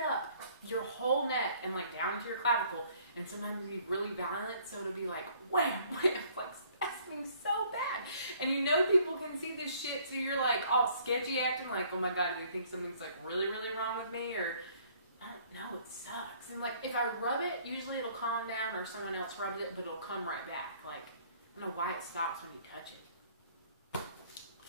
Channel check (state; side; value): inverted; both; correlation -0.60